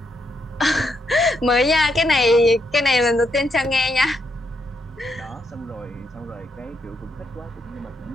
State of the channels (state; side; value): normal; both; correlation 0.79